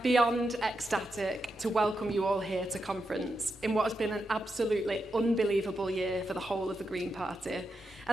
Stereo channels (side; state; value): both; normal; correlation 0.86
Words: beyond ecstatic to welcome you all here to conference in what has been an absolutely unbelievable year for the whole of the Green Party,